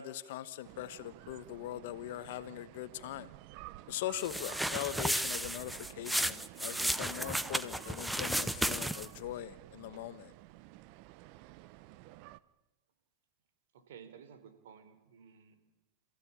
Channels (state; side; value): normal; both; correlation 0.60